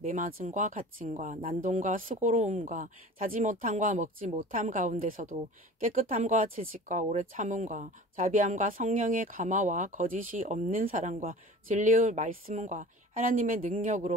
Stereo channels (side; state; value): both; normal; correlation 0.40